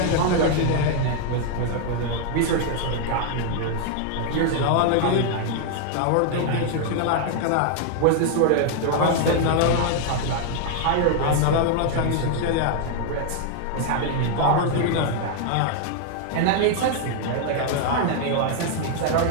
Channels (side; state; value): both; different; correlation 0.00